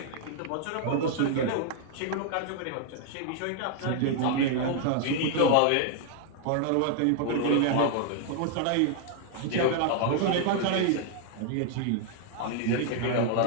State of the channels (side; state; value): both; different; correlation 0.00